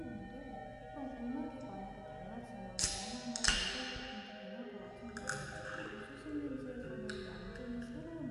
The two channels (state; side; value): identical; both; correlation 1.00